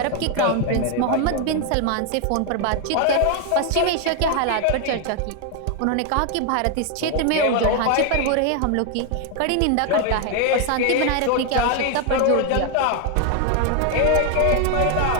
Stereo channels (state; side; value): different; both; correlation 0.01